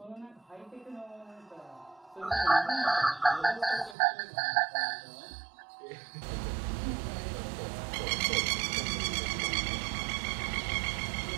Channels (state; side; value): drops out; left; at 4.0 s